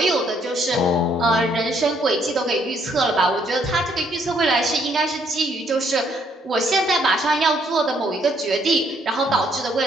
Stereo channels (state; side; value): normal; both; correlation 0.69